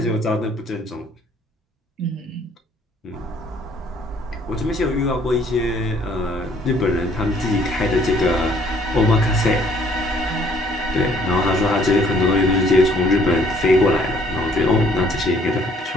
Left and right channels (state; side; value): normal; both; correlation 0.61